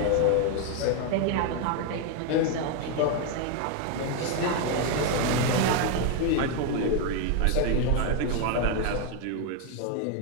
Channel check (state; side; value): different; both; correlation 0.01